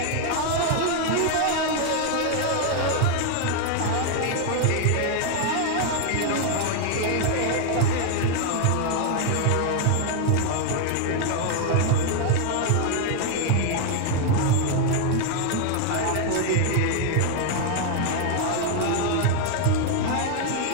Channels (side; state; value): both; different; correlation 0.00